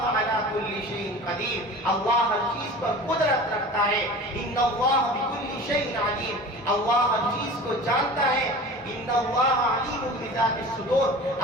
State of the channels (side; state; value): both; normal; correlation 0.38